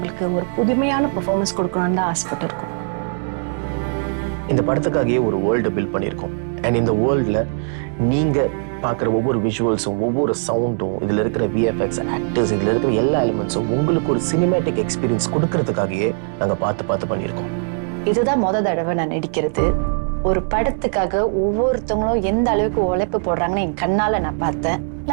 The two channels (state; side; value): silent; left; 66 dB below the other